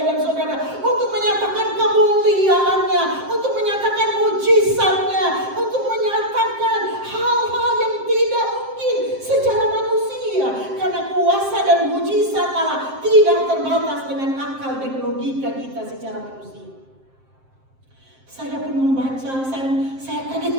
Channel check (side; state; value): left; late; 7.6 ms